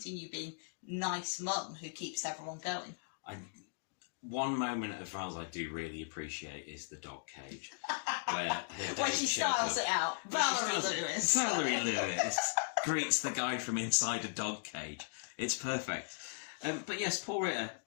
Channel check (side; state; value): right; silent; digital silence